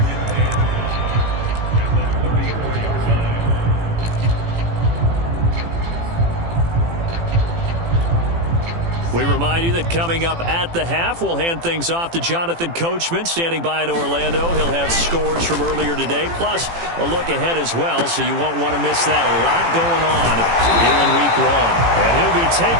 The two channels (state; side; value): late; left; 18 ms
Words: We remind you that coming up at the half, we'll hand things off to Jonathan Coachman, standing by in Orlando. He'll have scores from earlier today, plus a look ahead as well, so you won't want to miss that. A lot going on here in Week 1. And he'll be